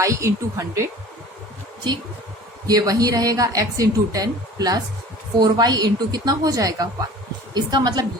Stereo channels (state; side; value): normal; both; correlation 0.44